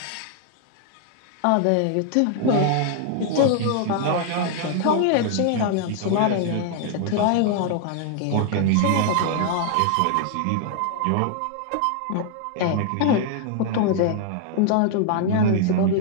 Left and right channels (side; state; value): both; different; correlation 0.00